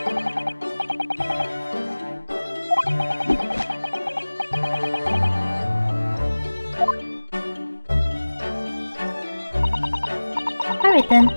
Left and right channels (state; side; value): inverted; both; correlation -1.00